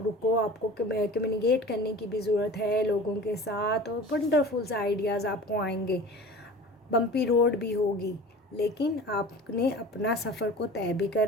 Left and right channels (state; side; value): normal; both; correlation 0.39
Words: रुको, आपको कम्युनिकेट करने की भी ज़रूरत है लोगों के साथ, और वंडरफुल से आइडियाज़ आपको आएंगे। बम्पी रोड भी होगी, लेकिन आपने अपना सफ़र को तय भी